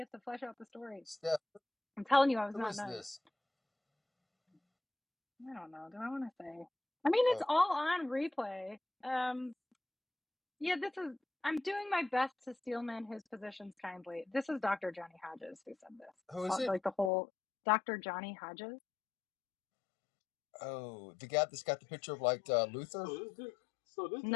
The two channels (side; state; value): right; drops out; at 17.1 s